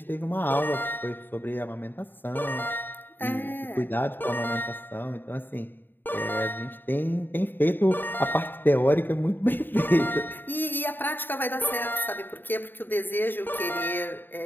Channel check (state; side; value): late; right; 0.093 ms